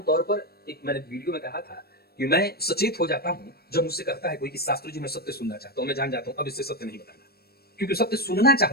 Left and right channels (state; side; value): late; right; 0.46 ms